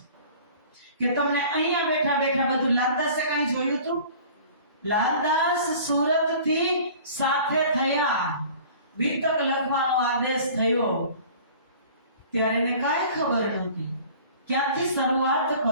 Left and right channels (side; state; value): both; inverted; correlation -0.46